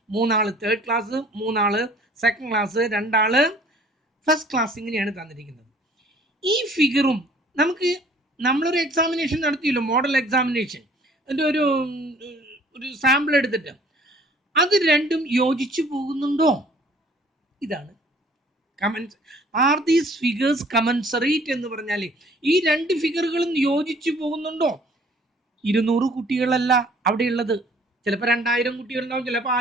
3 ആള് തേർഡ് ക്ലാസ്, 3 ആള് സെക്കൻഡ് ക്ലാസ്, 2 ആള് ഫസ്റ്റ് ക്ലാസ്. ഇങ്ങനെയാണ് തന്നിരിക്കുന്നത്. ഈ ഫിഗറും നമുക്ക് നമ്മളൊരു എക്സാമിനേഷൻ നടത്തിയല്ലോ, മോഡൽ എക്സാമിനേഷൻ, അതിൻ്റെ ഒരു സാമ്പിൾ എടുത്തിട്ട് അത് രണ്ടും യോജിച്ചു പോകുന്നുണ്ടോ? ഇതാണ് കമൻസ്. ആർ ദീസ് ഫിഗേഴ്സ് കമൻസറേറ്റ് എന്ന് പറഞ്ഞാൽ ഈ 2 ഫിഗറുകളും യോജിച്ചു പോകുന്നുണ്ടോ? 200 കുട്ടികളല്ല അവിടെ ഉള്ളത്. ചിലപ്പോൾ 2000 കുട്ടികളുണ്ടാവും, ചിലപ്പോൾ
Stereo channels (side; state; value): both; normal; correlation 0.55